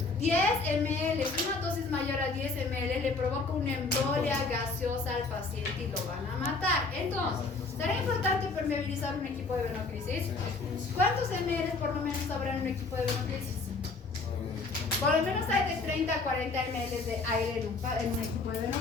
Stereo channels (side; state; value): right; quieter; 3.9 dB